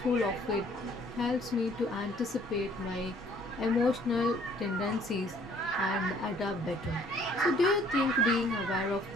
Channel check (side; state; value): both; normal; correlation 0.58